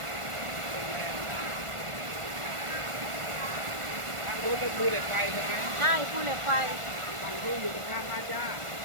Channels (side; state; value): left; late; 1.4 ms